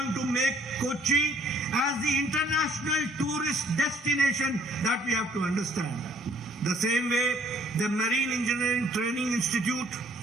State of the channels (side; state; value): both; normal; correlation 0.61